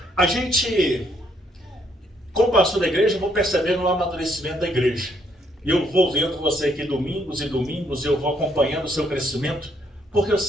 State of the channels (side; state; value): both; normal; correlation 0.71